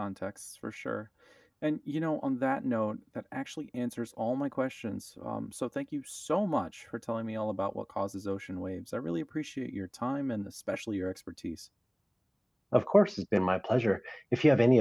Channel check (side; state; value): both; identical; correlation 1.00